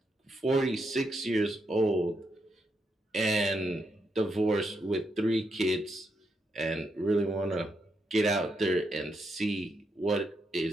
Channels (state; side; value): normal; both; correlation 0.81